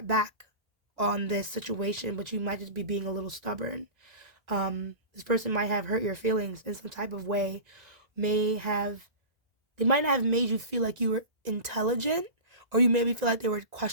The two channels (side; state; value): left; late; 1.6 ms